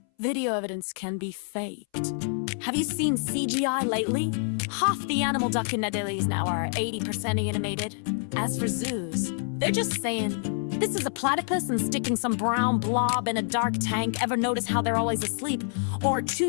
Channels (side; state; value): right; silent; 60 dB below the other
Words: Video evidence can be faked. Have you seen CGI lately? Half the animal documentaries now are 80% animated. As for zoos, they're just saying, this is a platypus and sticking some brown blob in a dark tank. Ever notice how they're always asleep? Or